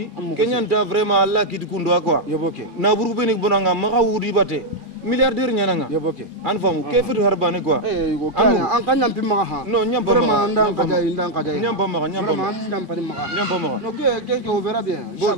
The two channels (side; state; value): left; late; 2.4 ms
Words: kenyanta vraiment Allah ki dukundo quoi yoboke na buru benik bonanga maka wudi bate milliardaire nyananga yoboke an famu ke futu harbane quoi go kana an kanyam pimma ha non nyamba vraiment ndang kada nyamba ma no ke on verra bien